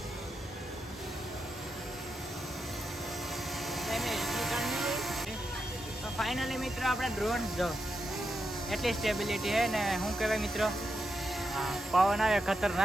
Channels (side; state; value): both; normal; correlation 0.85